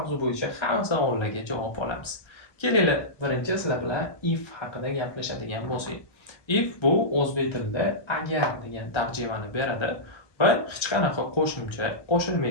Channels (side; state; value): right; late; 1.3 ms